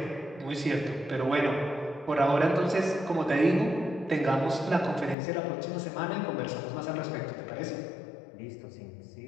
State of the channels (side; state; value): right; drops out; at 5.2 s